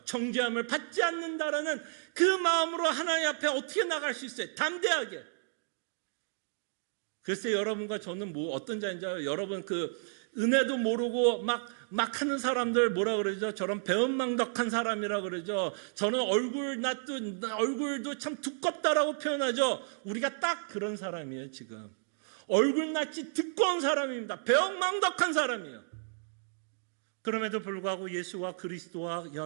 정죄함을 받지 않는다라는 그 마음으로 하나님 앞에 어떻게 나갈 수 있어요? 담대하게. 글쎄 여러분과 저는 어떤 자인지 알아요? 여러분 은혜도 모르고 막 하는 사람들 저런 배은망덕한 사람이라 그러죠. 저는 얼굴도 참 두껍다라고 표현하죠. 우리가 딱 그런 사람이에요 지금. 얼굴낯이 두꺼운 사람입니다. 배은망덕한 사람이에요. 그럼에도 불구하고 예수와 그리스도와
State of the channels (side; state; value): left; silent; digital silence